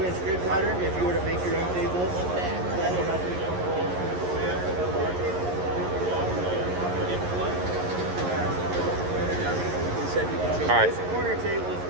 grid pattern. If you were to make your own table, that would have 3/4 holes. All right. This corner table is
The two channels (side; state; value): left; late; 11 ms